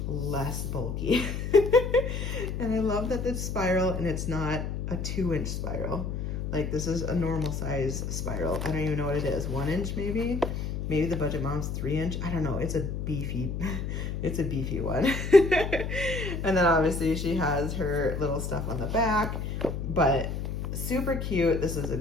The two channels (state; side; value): noise; left; hum, 3 dB below the sound